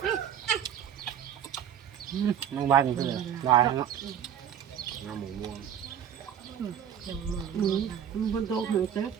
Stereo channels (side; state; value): left; quieter; 9.3 dB